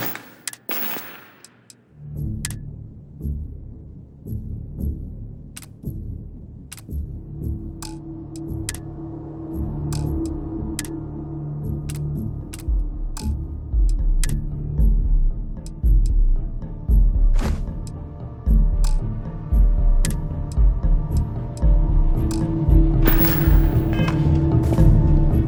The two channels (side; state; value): both; identical; correlation 1.00